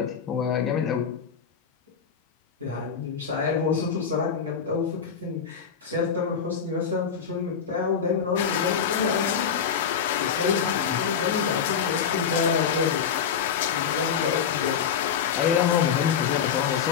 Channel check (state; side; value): quieter; right; 7.2 dB